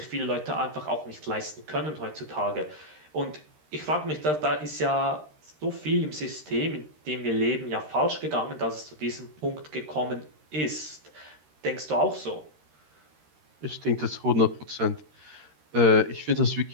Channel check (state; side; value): late; left; 13 ms